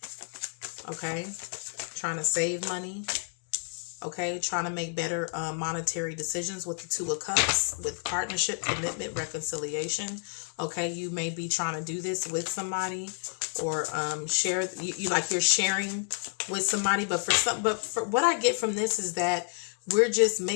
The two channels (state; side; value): silent; right; 58 dB below the other